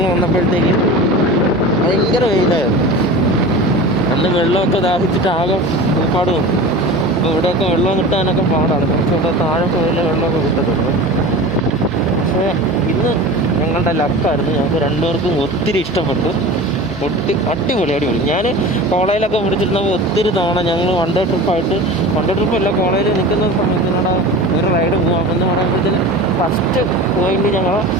വന്നപ്പോഴത്തേക്ക് ഭയങ്കര വെയിലായിരുന്നു. അന്ന് വെള്ളമൊക്കെ ദാഹിച്ചിട്ട് ആകെ ഒരുപാട് വന്നു. അപ്പോൾ ഇവിടെയൊക്കെ വെള്ളം കിട്ടാനൊക്കെ പാടാണ്, കുറച്ചുകൂടെ താഴെ പോയാലേ വെള്ളമൊക്കെ കിട്ടത്തുള്ളൂ. പക്ഷേ ഇന്ന് ഞങ്ങളുടെ ലക്കായിരുന്നു, ഞങ്ങൾക്ക് രണ്ടുപേർക്കും ഒത്തിരി ഇഷ്ടപ്പെട്ടു. അടിപൊളി. ഞാൻ കോളേജിലൊക്കെ പിടിച്ചിരുന്നപ്പോൾ ഒത്തിരി തവണ ഞങ്ങൾ വൺ ഡേ ട്രിപ്പല്ല, കോളേജിൽ നിൽക്കുന്ന സമയത്തിനോട് ഒരു റൈഡ് പോകാം എന്ന് പറയുമ്പോഴത്തേന് ഫസ്റ്റ് പോയിന്റ് ഞങ്ങൾ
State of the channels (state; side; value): noise; right; hum, 19 dB below the sound